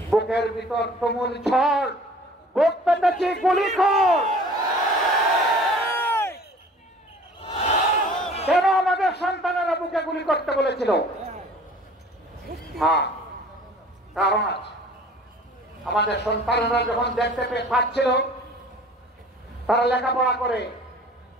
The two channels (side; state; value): both; normal; correlation 0.48